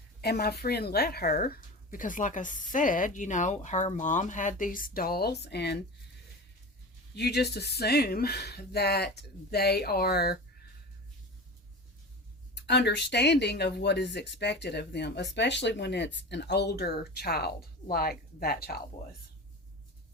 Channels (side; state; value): both; normal; correlation 0.31